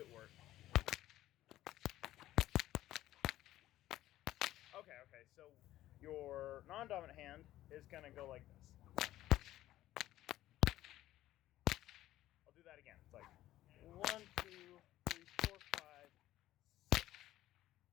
work? Okay. So your non-dominant hand is going to go like this. I'll do that again. It's like 1, 2, 3, 4, 5, 6.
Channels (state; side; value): quieter; right; 14.5 dB